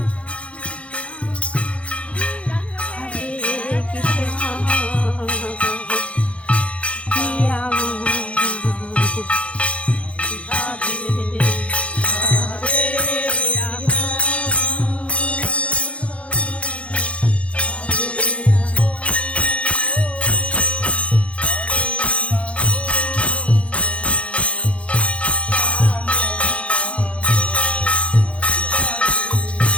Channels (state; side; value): late; right; 0.062 ms